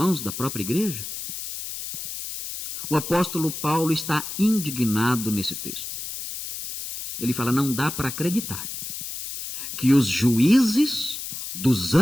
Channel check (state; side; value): noise; left; hiss, 7 dB below the sound